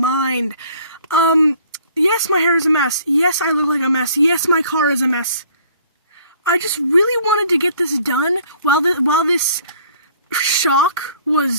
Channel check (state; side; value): inverted; both; correlation -0.57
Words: Yes, my hair is a mess. Yes, I look like a mess. Yes, my car is a mess. I just really wanted to get this done while this shock